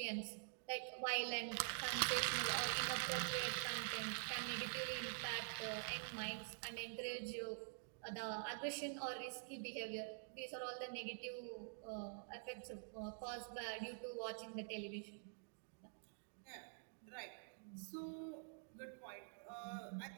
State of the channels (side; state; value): left; silent; digital silence